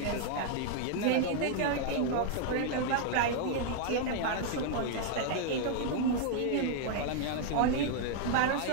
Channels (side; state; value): both; different; correlation 0.00